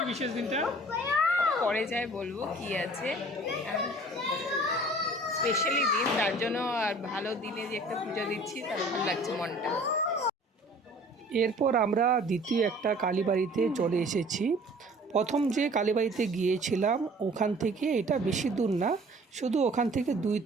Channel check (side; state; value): both; normal; correlation 0.50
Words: বিশেষ দিনটা পরে যাই বলবো কি আছে, স্পেশালি দিন, তার জন্য। আর ভালো দিনে যে একটা পুজো দিচ্ছি, তার ভালো লাগছে মনটা। এরপর আমরা দ্বিতীয় একটা কালীবাড়িতে চলে এসেছি। প্রথম যে কালীবাড়িতে গিয়েছিলাম ওখান থেকে এটা বেশি দূর না, শুধু ওখান থেকে 2